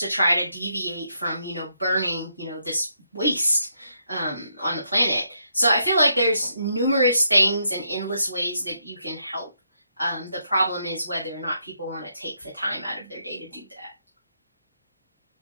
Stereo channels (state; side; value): inverted; both; correlation -0.77